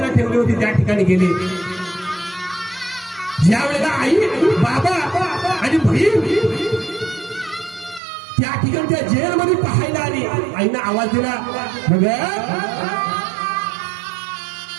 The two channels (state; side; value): drops out; left; at 8.0 s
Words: ठेवली होती, त्या ठिकाणी गेले. ज्या वेळेला आई, बाबा आणि बहीण त्या ठिकाणी त्या जेलमध्ये पाहायला आली, आईनं आवाज दिला, बघ